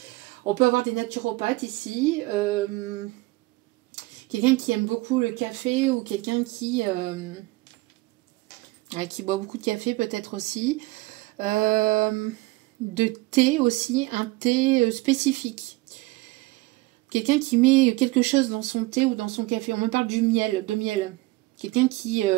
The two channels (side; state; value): left; quieter; 21.1 dB